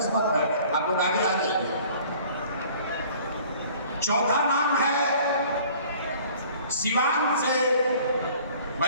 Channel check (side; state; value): both; inverted; correlation -0.51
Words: है, आप लोग आगे आ जाइए। चौथा नाम है सिवान से